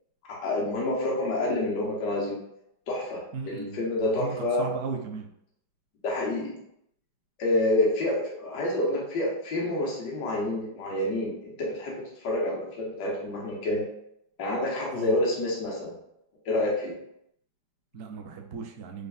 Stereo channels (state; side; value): late; right; 5.0 ms